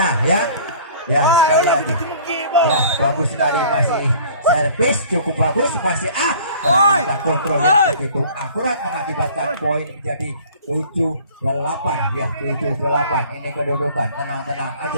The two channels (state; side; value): inverted; both; correlation -0.49